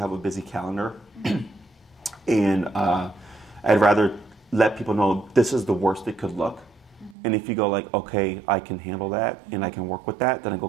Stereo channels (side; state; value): left; drops out; at 7.2 s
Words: a busy calendar. And I'd rather let people know this is the worst it could look. And if you go like, okay, I can handle that and I can work with that, then I go,